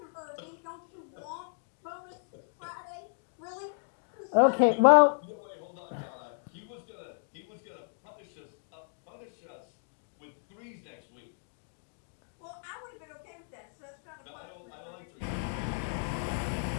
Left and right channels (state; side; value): silent; right; digital silence